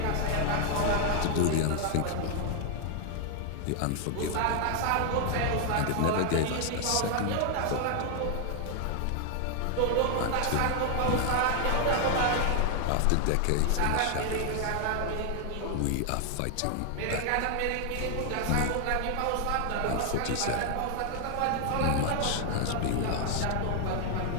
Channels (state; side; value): different; both; correlation 0.00